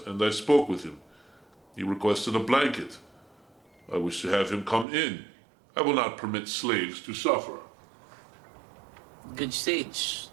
I spoke with him. He requested a blanket. I wish to have him come in. I will not permit slaves to suffer. Good sage,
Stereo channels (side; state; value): left; drops out; at 4.9 s